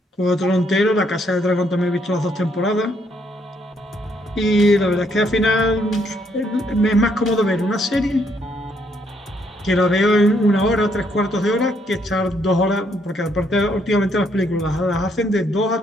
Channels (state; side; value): normal; both; correlation 0.71